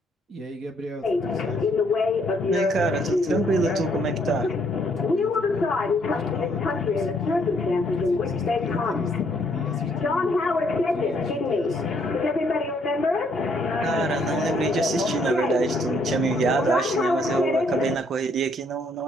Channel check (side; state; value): both; normal; correlation 0.69